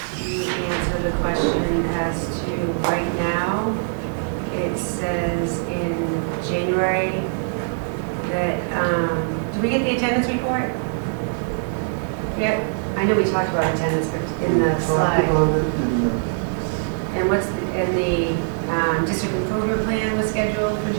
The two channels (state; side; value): silent; left; 58 dB below the other